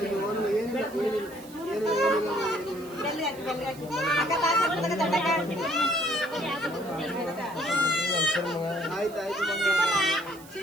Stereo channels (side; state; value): right; noise; hiss, 21 dB below the sound